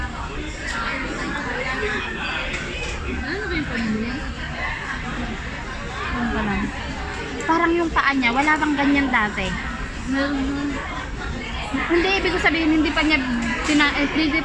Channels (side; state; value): both; identical; correlation 1.00